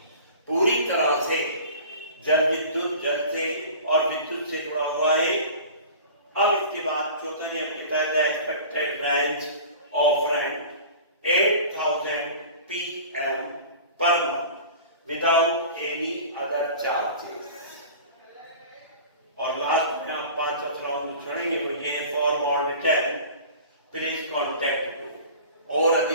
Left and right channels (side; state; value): both; inverted; correlation -0.40